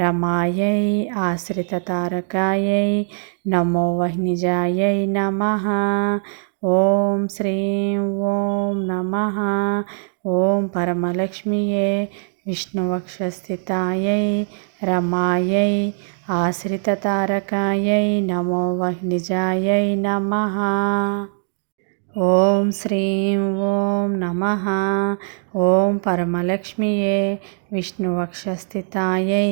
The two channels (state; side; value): silent; left; digital silence